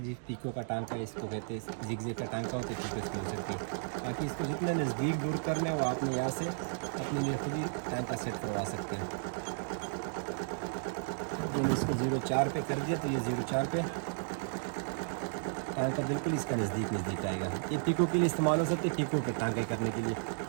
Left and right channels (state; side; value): silent; left; digital silence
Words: जी, पीको का टांका इसको कहते हैं, जिगजैग का टांका होता है, पीको इसको हो सकती है। बाकी इसको जितना नज़दीक दूर करना है वो आपने यहाँ से अपने लिए खुद ही टांका सेट करवा सकते हैं। मैंने इसको 0.4 पे कर दिया तो ये 0.4 पे टांका बिल्कुल इसका नज़दीक आएगा। ये पीको के लिए इस्तेमाल हो सकते हैं, पीको पे टांके करने के लिए।